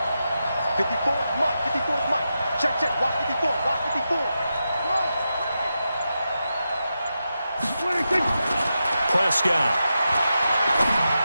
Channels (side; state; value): both; inverted; correlation -0.89